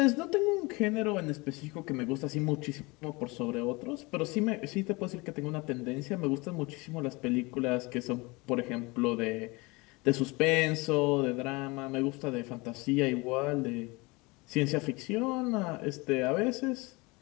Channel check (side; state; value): right; quieter; 25.2 dB